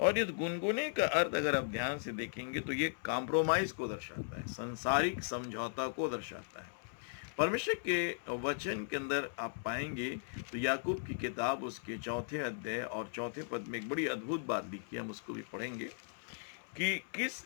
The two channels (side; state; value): right; silent; 53 dB below the other